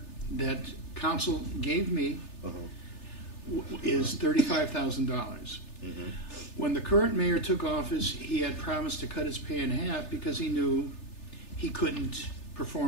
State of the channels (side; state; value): right; late; 3.4 ms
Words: that council gave me is $35,000. Mm-hmm. When the current mayor took office, he had promised to cut his pay in half because he knew he couldn't